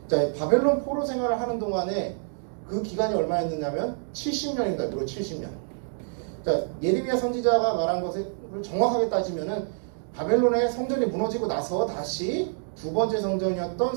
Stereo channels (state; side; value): silent; left; digital silence